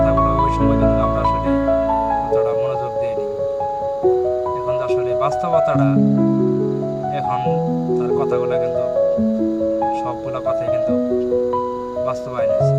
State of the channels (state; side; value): identical; both; correlation 1.00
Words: বাস্তবতাটা এখন তার কথাগুলো কিন্তু সবগুলো কথাই কিন্তু বাস্তবায়ন হয়েছে।